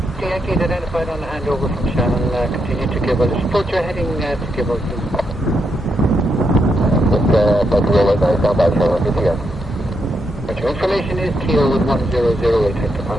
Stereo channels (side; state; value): both; normal; correlation 0.81